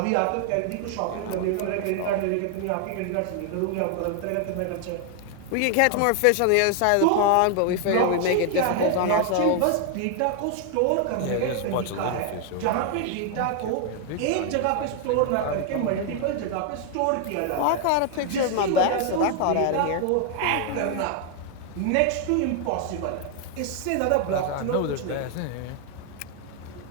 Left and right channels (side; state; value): both; different; correlation 0.00